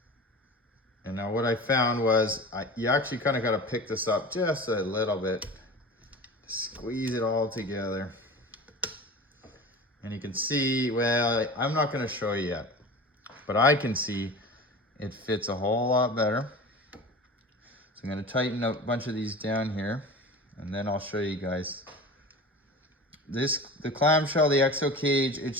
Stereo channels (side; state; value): both; normal; correlation 0.35